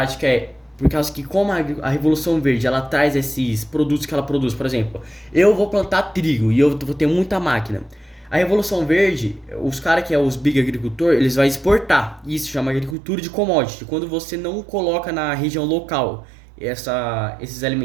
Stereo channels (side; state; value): left; drops out; at 13.0 s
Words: é por causa que como a Revolução Verde, ela traz esses produtos que ela produz. Por exemplo, eu vou plantar trigo e eu vou ter muita máquina. A Revolução Verde, os caras que é os big agricultor, eles vão exportar. Isso chama agricultura de commodity. Quando você não coloca na região local esses